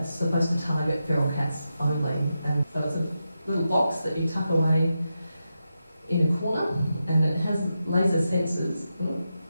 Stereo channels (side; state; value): both; inverted; correlation -0.89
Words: supposed to target feral cats only. And so it's a little box that you tuck away in a corner, and it has laser sensors.